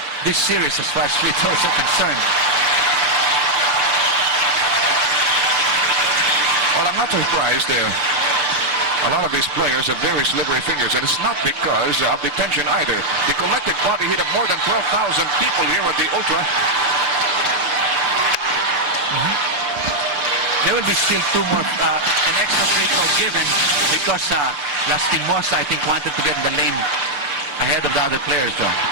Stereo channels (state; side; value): late; left; 6.7 ms